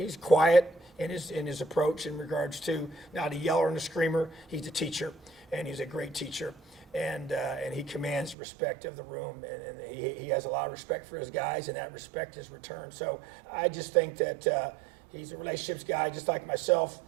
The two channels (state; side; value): drops out; left; at 8.3 s